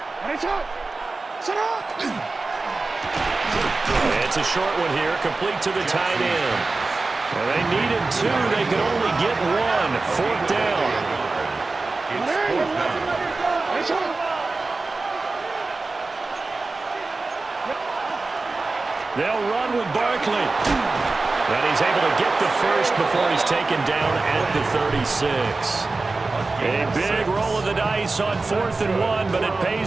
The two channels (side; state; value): left; quieter; 3.6 dB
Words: It's a short one here, complete to the tight end. Well, they needed 2. They could only get 1. 4th down. They'll run with Barkley. And he's able to get the first before he's taken down at the 36. A big roll of the dice on 4th and 1, but it